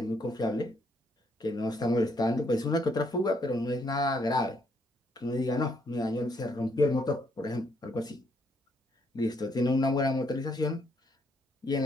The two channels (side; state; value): both; normal; correlation 0.72